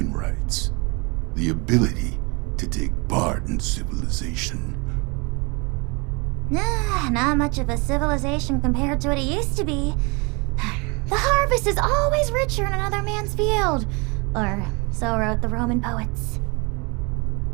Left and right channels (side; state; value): left; quieter; 29.4 dB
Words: rights, the ability to take part in civilization. Not much of a civilization compared to what it used to be. The harvest is always richer in another man's field. Or so wrote the Roman poets.